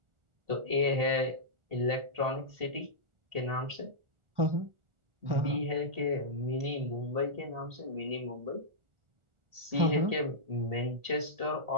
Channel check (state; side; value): late; left; 1.4 ms